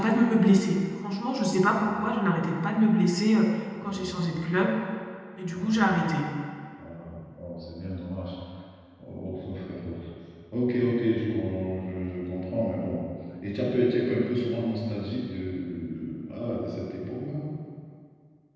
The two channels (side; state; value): both; identical; correlation 1.00